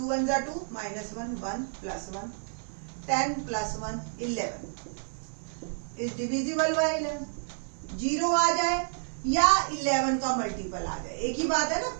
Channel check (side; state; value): left; silent; digital silence